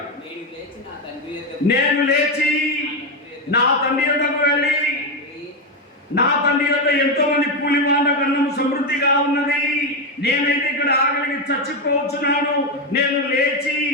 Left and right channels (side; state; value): both; normal; correlation 0.09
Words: నేను లేచి నా తండ్రి యొద్దకు వెళ్ళి నా తండ్రి యొద్ద ఎంతో మంది కూలివాళ్ళ అన్నం సమృద్ధిగా ఉన్నది, నేనైతే ఇక్కడ ఆకలికి చచ్చిపోతున్నాను. నేను లేచి